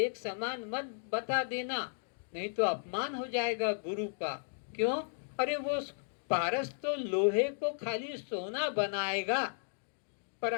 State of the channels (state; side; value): silent; right; digital silence